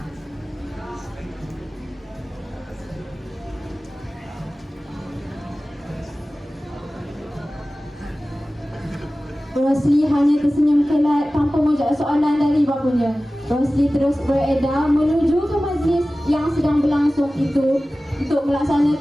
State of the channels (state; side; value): normal; both; correlation 0.97